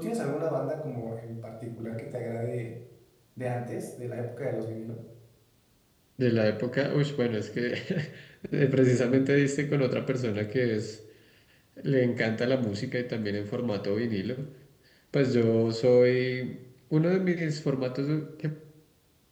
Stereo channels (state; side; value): identical; both; correlation 1.00